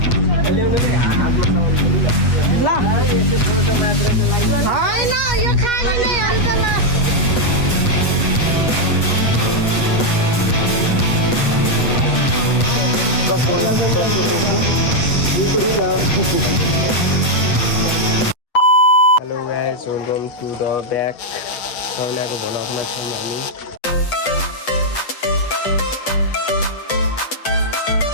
guys, welcome to the back. Saunako भ्लगमा छौँ हामी।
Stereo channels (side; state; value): right; late; 8.3 ms